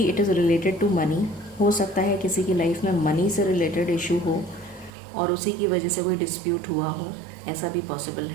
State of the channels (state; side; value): drops out; left; at 4.9 s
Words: it is related to money. हो सकता है किसी की लाइफ में मनी से रिलेटेड इशू हो और उसी की वजह से कोई डिस्प्यूट हुआ हो, ऐसा भी पॉसिबल